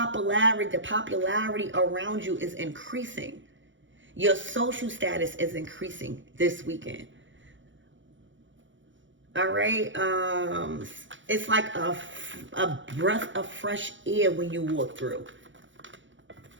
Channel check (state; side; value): late; left; 0.55 ms